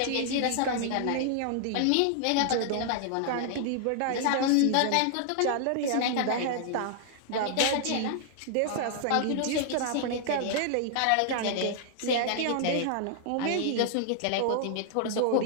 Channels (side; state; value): both; different; correlation 0.00